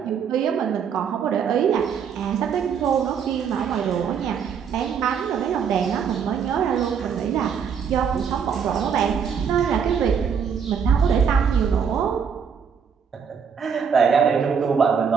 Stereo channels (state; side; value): quieter; left; 7.0 dB